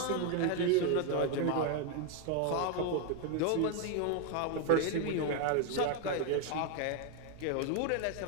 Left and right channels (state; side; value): different; both; correlation 0.01